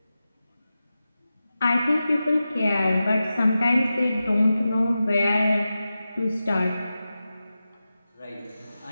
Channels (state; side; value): inverted; both; correlation -0.93